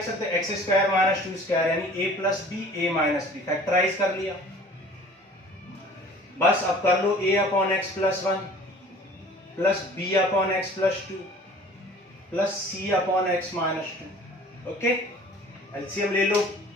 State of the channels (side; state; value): both; normal; correlation 0.48